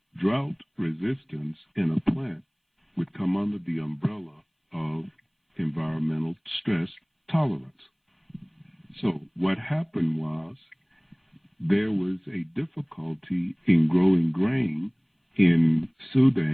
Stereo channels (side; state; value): both; identical; correlation 1.00